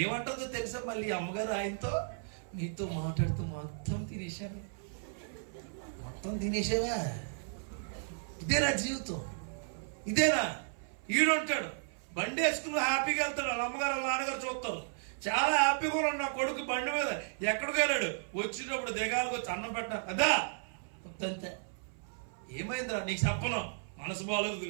ఏమంటుందో తెలుసా? మళ్ళీ అమ్మగారు ఆయనతో, నీతో మాట్లాడుతూ మొత్తం తినేసావా? ఇదేనా జీవితం? ఇదేనా? ఈడుంటాడు బండి వేసుకుని హ్యాపీగా వెళ్తాడు, వాళ్ళ అమ్మగారు వాళ్ళ నాన్నగారు చూస్తారు. చాలా హ్యాపీగా ఉన్నాడు నా కొడుకు బండి మీద. ఎక్కడికి వెళ్ళాడు, వచ్చేటప్పుడు దిగాలకు వచ్చి అన్నం పెట్టా అదా అంతే. ఏమైందిరా నీకు చెప్పను, మనసు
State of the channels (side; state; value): left; silent; 55 dB below the other